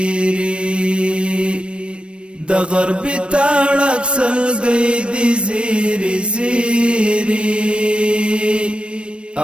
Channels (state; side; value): late; left; 0.058 ms